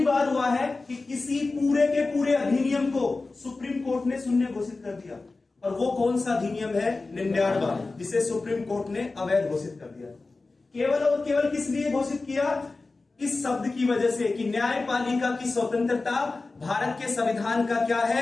बार हुआ है कि किसी पूरे के पूरे अधिनियम को सुप्रीम कोर्ट ने शून्य घोषित कर दिया। और वो कौन सा अधिनियम है? 99, जिसे सुप्रीम कोर्ट ने अवैध घोषित कर दिया। केवल और केवल किस लिए घोषित किया? इस शब्द की वजह से कि न्यायपालिका की स्वतंत्रता भारत के संविधान का क्या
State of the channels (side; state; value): right; quieter; 3.6 dB